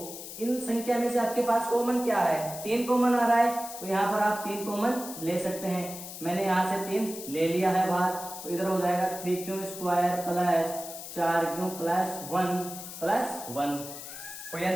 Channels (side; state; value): left; noise; hiss, 11 dB below the sound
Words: इन संख्या में से आपके पास कॉमन क्या है, 3 कॉमन आ रहा है, तो यहाँ पर आप 3 कॉमन ले सकते हैं। मैंने यहाँ से 3 ले लिया है बाहर, तो इधर हो जाएगा 3q square plus 4q plus 1 plus 1। कोई